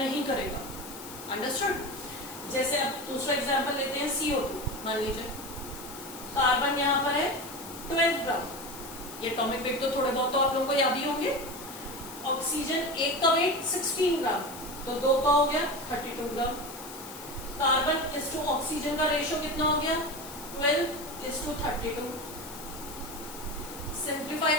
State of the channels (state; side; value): noise; left; hiss, 14 dB below the sound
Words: करेगा। अंडरस्टूड? जैसे अब दूसरा एग्जांपल लेते हैं, CO2 मान लीजिए। कार्बन यहां पर है 12 ग्राम। ये एटॉमिक वेट तो थोड़े बहुत तो आप लोगों को याद ही होंगे। ऑक्सीजन एक का वेट 16 ग्राम। तो 2 का हो गया 32 ग्राम। कार्बन इस टू ऑक्सीजन का रेशियो कितना हो गया 12:32। सिंप्लीफाई